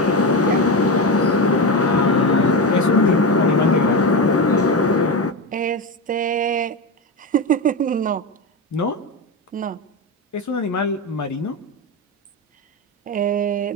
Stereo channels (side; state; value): both; normal; correlation 0.17